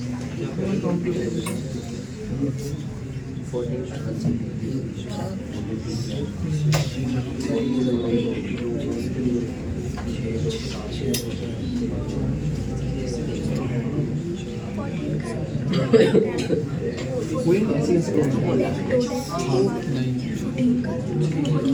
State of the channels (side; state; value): both; identical; correlation 1.00